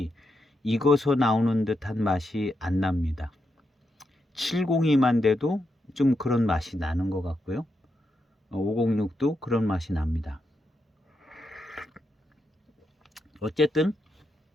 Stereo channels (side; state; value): both; normal; correlation 0.84